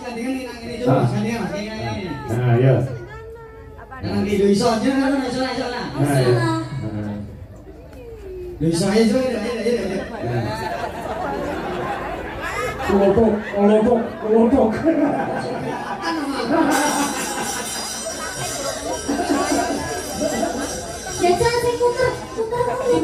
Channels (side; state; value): both; identical; correlation 1.00